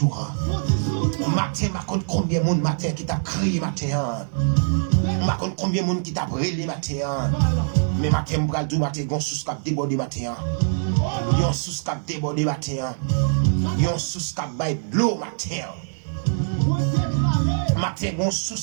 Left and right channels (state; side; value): silent; left; digital silence